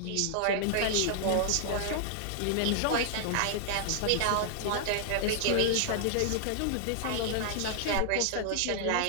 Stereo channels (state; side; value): different; both; correlation -0.01